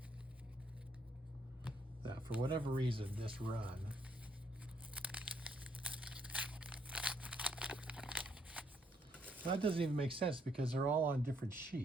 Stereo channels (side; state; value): both; normal; correlation 0.71